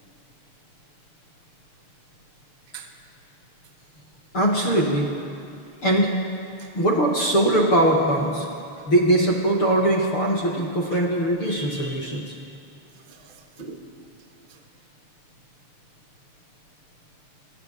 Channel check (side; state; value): right; late; 6.7 ms